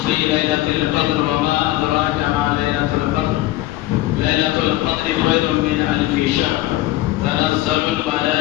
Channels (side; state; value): right; quieter; 16.5 dB